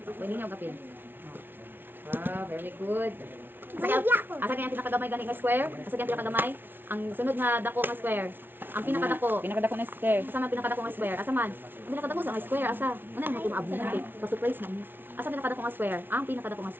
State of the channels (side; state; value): left; late; 0.10 ms